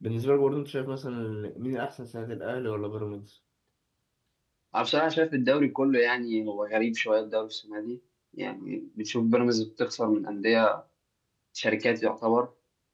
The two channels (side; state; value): both; identical; correlation 1.00